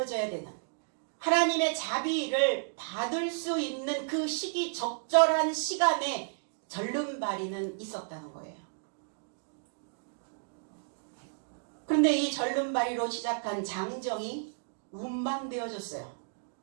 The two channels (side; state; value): left; silent; digital silence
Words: 되는, 하나님의 자비를 받을 수 있는 그 시기 적절한 시간에 절름발이는 있었다는 거예요. 그런데 이 절름발이로 시작한 장정이 운반되어졌어요.